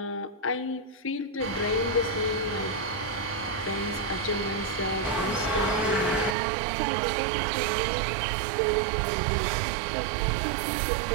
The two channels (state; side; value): drops out; left; at 6.4 s